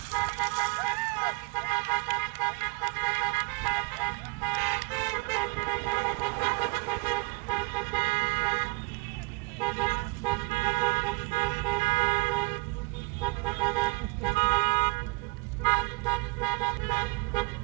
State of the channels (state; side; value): quieter; left; 28.9 dB